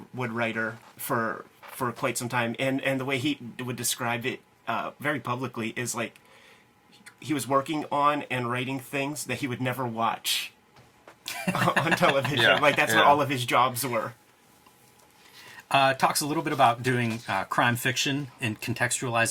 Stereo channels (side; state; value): both; identical; correlation 1.00